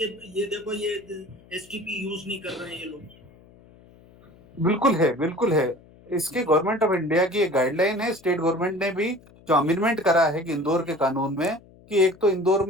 ये देखो ये एसटीपी यूज नहीं कर रहे हैं ये लोग। बिल्कुल है, बिल्कुल है। इसके गवर्नमेंट ऑफ इंडिया की एक गाइडलाइन है। स्टेट गवर्नमेंट ने भी जो अमेंडमेंट करा है कि इंदौर के कानून में, कि एक तो इंदौर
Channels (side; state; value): left; noise; hum, 25 dB below the sound